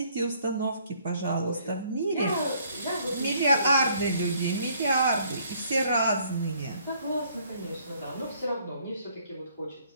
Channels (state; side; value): inverted; both; correlation -0.63